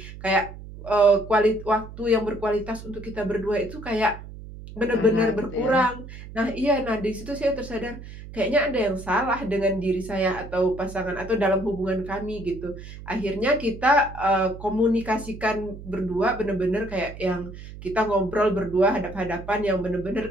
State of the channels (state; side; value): noise; right; hum, 14 dB below the sound